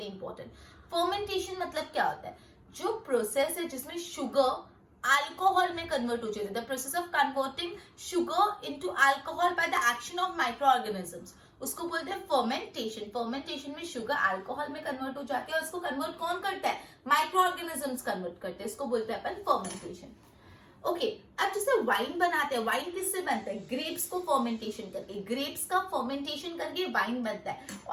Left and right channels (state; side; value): identical; both; correlation 1.00